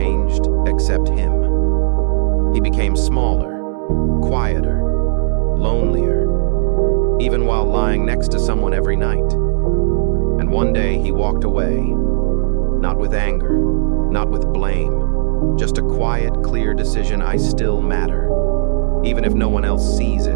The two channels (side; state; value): left; silent; digital silence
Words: except him. He became smaller, quieter, lonelier, even while lying next to someone every night. And one day he walked away, not with anger, not with blame, just a quiet, clear decision: I still matter. Even if no one else sees